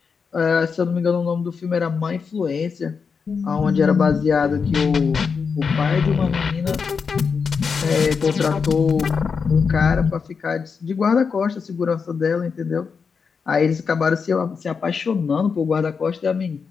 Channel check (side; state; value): right; quieter; 5.6 dB